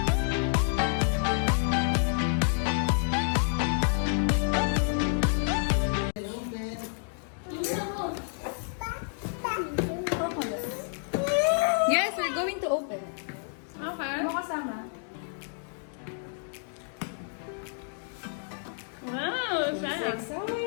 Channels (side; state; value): right; silent; 58 dB below the other